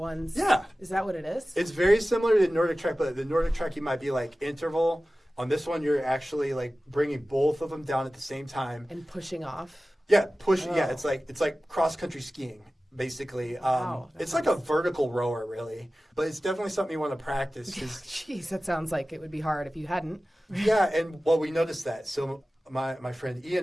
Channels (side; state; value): both; normal; correlation 0.96